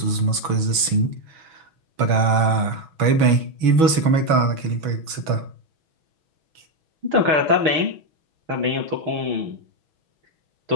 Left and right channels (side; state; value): left; late; 6.2 ms